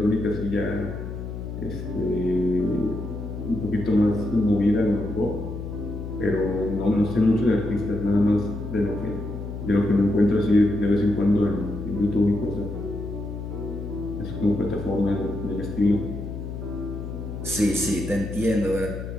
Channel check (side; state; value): left; noise; hum, 7 dB below the sound